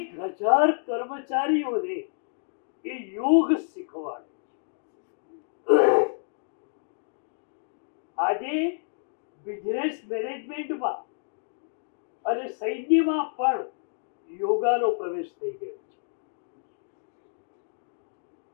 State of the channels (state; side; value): silent; right; digital silence